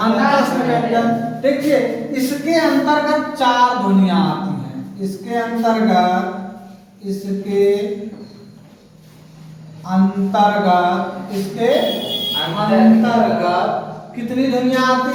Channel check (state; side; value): identical; both; correlation 1.00